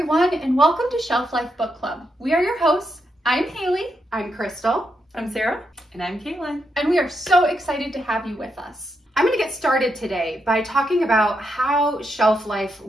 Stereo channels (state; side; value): normal; both; correlation 0.82